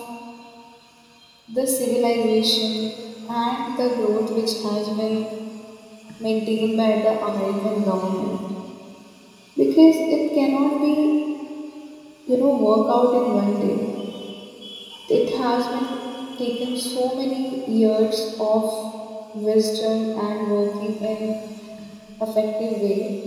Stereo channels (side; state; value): both; identical; correlation 1.00